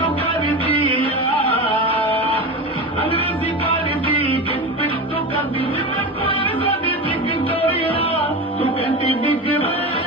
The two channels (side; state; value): both; normal; correlation 0.25